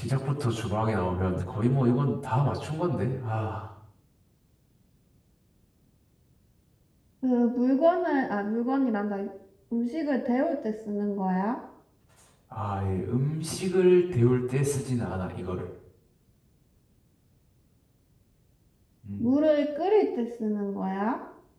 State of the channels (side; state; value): both; identical; correlation 1.00